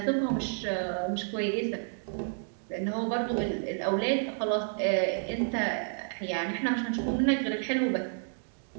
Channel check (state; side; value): silent; left; digital silence